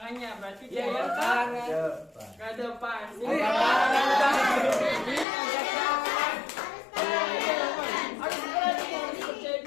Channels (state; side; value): drops out; right; at 5.2 s